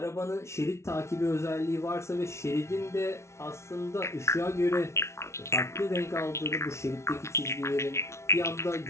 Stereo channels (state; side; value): late; right; 0.13 ms